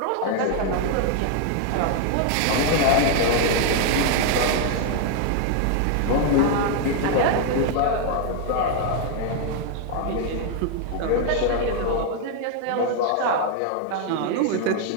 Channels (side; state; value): both; different; correlation 0.00